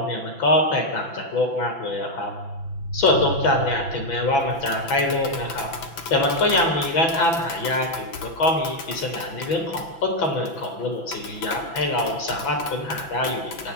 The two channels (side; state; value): right; late; 6.0 ms